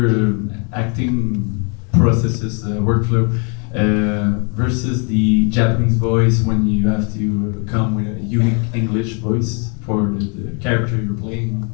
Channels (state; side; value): quieter; right; 35.5 dB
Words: processes, workflow, versus the Japanese voice when you have to come with a unique English voice for the character you're playing,